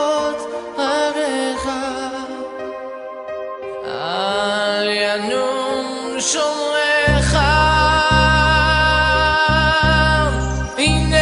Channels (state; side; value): identical; both; correlation 1.00